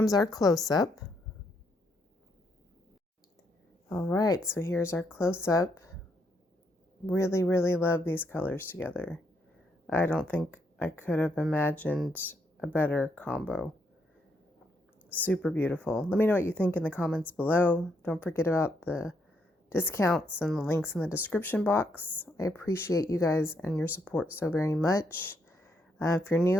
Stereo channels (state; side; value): normal; both; correlation 0.76